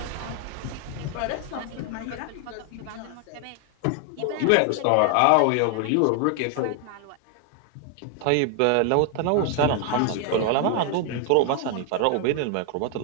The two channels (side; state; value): both; different; correlation 0.00